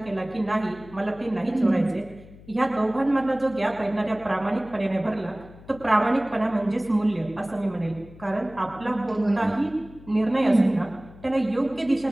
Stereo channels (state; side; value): noise; left; hum, 20 dB below the sound